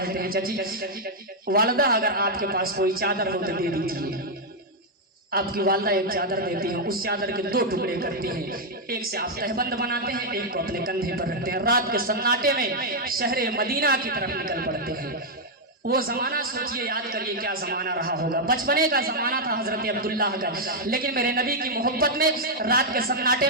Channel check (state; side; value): normal; both; correlation -0.02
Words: ہیں چچی والدہ اگر آپ کے پاس کوئی چادر ہو تو دے دیجیے۔ آپ کی والدہ ایک چادر دیتی ہیں، اس چادر کے 2 ٹکڑے کرتی ہیں، ایک سے آپ تہبند بناتے ہیں، ایک کو اپنے کندھے پر رکھتے ہیں، رات کے سناٹے میں شہر مدینہ کی طرف نکل پڑتے ہیں۔ وہ زمانہ سوچئے، یاد کریے کیا زمانہ رہا ہوگا، بچپنے کا زمانہ تھا حضرت عبداللہ کا، لیکن میرے نبی کی محبت میں رات کے سناٹے